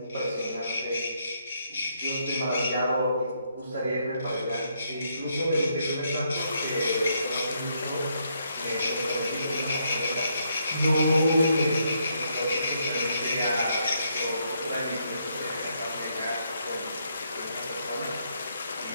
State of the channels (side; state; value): both; inverted; correlation -0.75